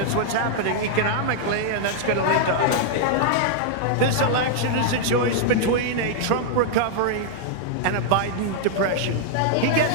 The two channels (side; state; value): both; different; correlation -0.01